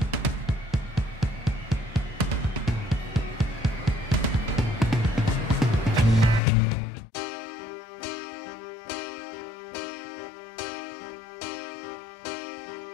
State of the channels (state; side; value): drops out; right; at 6.4 s